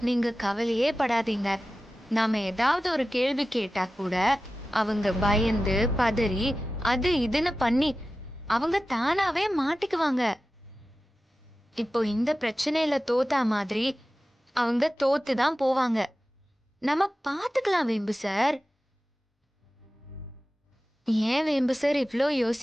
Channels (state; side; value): normal; both; correlation 0.95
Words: நீங்க கவலையே படாதீங்க. நாம ஏதாவது ஒரு கேள்வி கேட்டா கூட அவங்க பயந்து பதறி அது இதுன்னு பண்ணி அவங்க தானாவே மாட்டிக்குவாங்க. இப்போ இந்த பிரச்சனையில தோத்தா மாதிரி அவங்க தோத்துதான் போவாங்க. நம்ம பாத்துக்கலாம் வேம்பு சார். ஏன் வேம்பு சார் இவ்ளோ